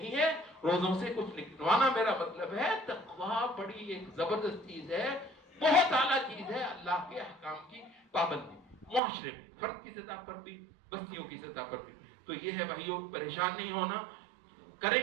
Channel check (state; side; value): drops out; left; at 9.0 s